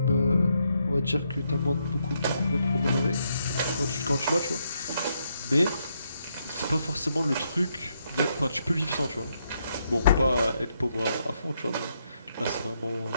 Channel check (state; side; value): inverted; both; correlation -0.77